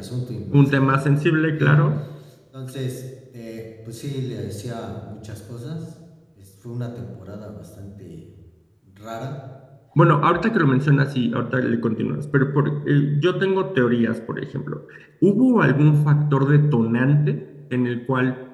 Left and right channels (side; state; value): both; identical; correlation 1.00